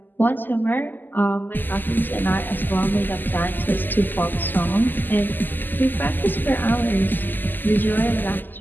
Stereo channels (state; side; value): late; right; 0.089 ms